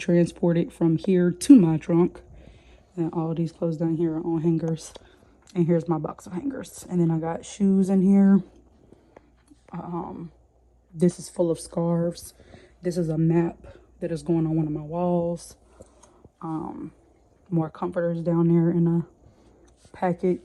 from here to my trunk. And all of these clothes down here are on hangers. And here's my box of hangers. And then I got shoes in here. This is full of scarves. This is a map that is going on one of my walls. More comforters down there in a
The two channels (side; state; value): both; identical; correlation 1.00